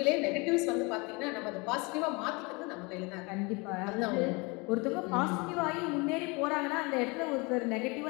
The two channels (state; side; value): quieter; right; 28.0 dB